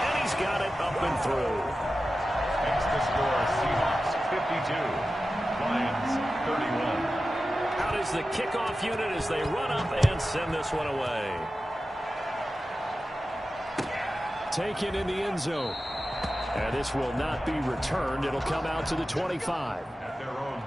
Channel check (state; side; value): normal; both; correlation 0.93